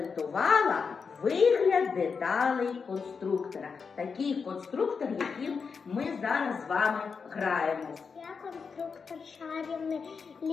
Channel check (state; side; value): quieter; right; 5.5 dB